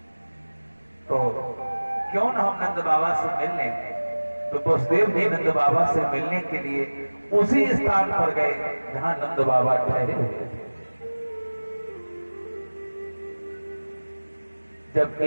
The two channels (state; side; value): inverted; both; correlation -1.00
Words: तो क्यों न हम नंद बाबा से मिल लें। तो वसुदेव जी नंद बाबा से मिलने के लिए उसी स्थान पर गए जहां नंद बाबा ठहरे हुए थे। जब